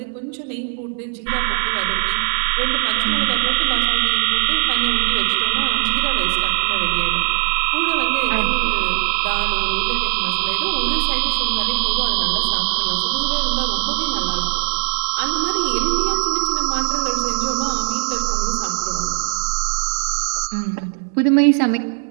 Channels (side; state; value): left; silent; 66 dB below the other